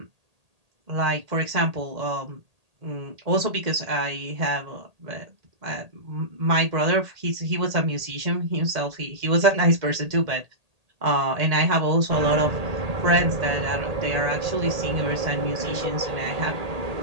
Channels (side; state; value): left; late; 1.8 ms